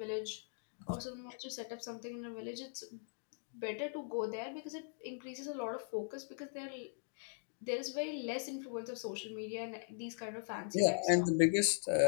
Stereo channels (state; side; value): silent; right; digital silence